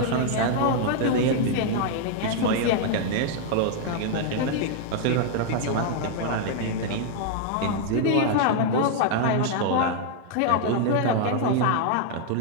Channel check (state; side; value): different; both; correlation 0.00